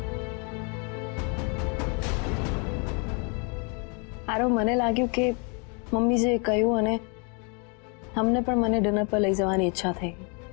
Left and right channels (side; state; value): right; quieter; 36.1 dB